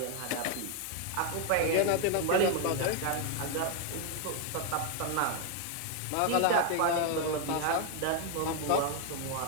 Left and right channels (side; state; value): both; different; correlation 0.00